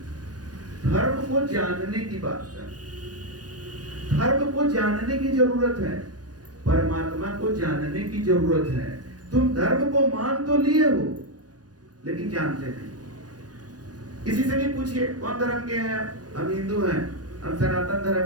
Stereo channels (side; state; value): left; late; 0.69 ms